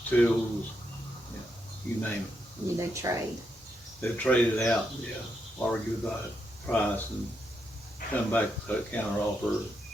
yeah, you name it. they trade. They'd trade it out, argue about price and come back with a counter offer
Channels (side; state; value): both; normal; correlation 0.81